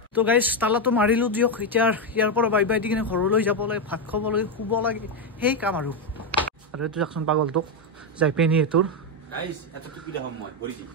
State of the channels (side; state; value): both; normal; correlation 0.05